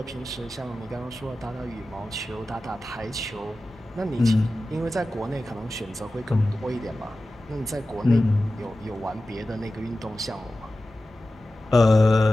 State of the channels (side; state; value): both; normal; correlation 0.95